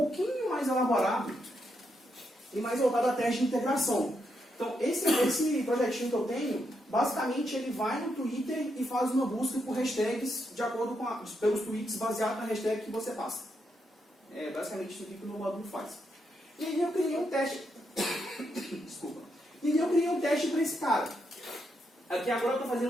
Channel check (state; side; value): normal; both; correlation 0.81